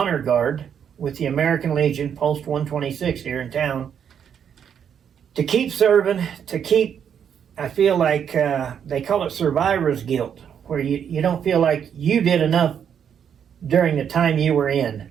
guard with the American Legion, Post 126 here in town. To keep serving, I feel like they call it survivor's guilt, where you don't feel like you did enough during the time you were in.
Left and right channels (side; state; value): left; quieter; 8.2 dB